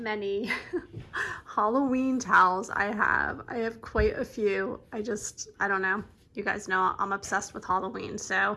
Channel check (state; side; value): identical; both; correlation 1.00